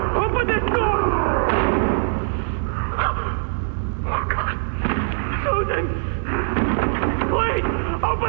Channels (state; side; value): silent; left; digital silence